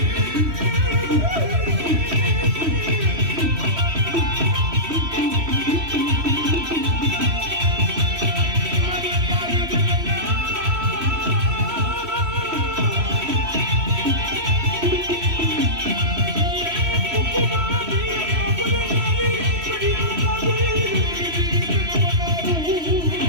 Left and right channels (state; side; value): late; left; 3.1 ms